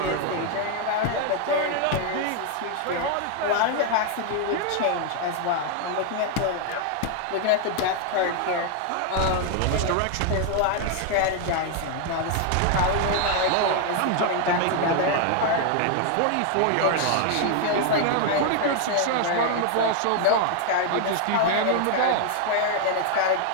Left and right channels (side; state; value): both; different; correlation 0.00